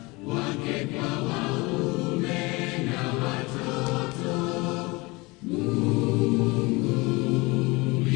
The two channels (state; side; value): quieter; right; 24.5 dB